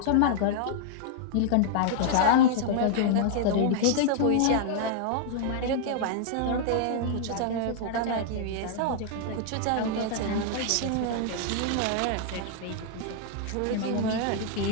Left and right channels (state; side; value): different; both; correlation -0.01